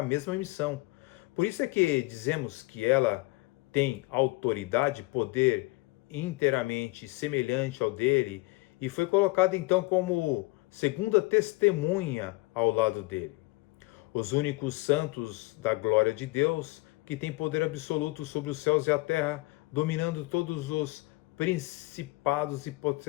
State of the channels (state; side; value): quieter; right; 22.6 dB